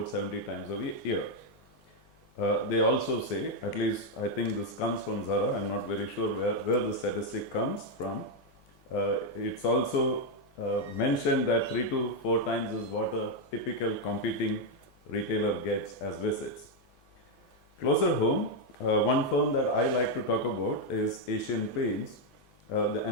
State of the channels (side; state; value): both; normal; correlation 0.02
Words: 70 times a year. They also say, at least I think this comes from Zara, I'm not very sure where the statistic comes from. It's also mentioned that 3 to 4 times is what a typical competing retailer gets as visits. Closer home, one firm that I like to talk about is Asian Paints,